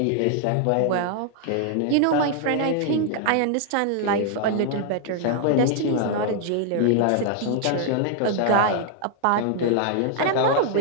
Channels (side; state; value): both; different; correlation 0.00